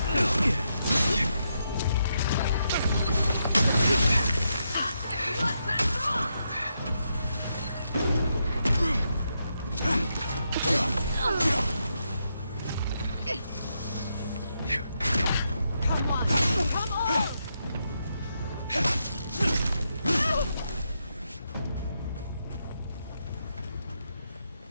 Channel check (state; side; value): inverted; both; correlation -0.82